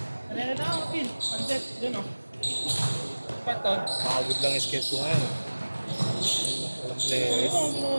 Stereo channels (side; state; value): both; inverted; correlation -1.00